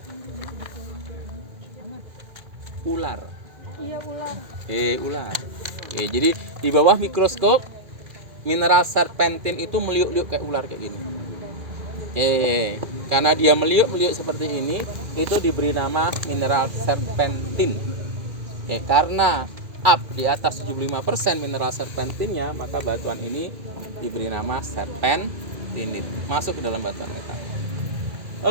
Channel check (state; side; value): late; left; 2.0 ms